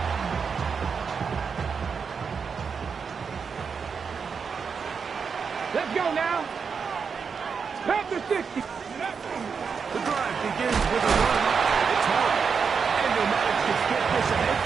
Let's go now. Past the 60. The drive begins with a run. It's hard. And Nomadic can get this ahead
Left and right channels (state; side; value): quieter; left; 5.9 dB